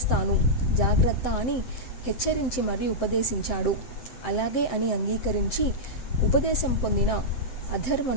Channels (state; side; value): late; right; 7.7 ms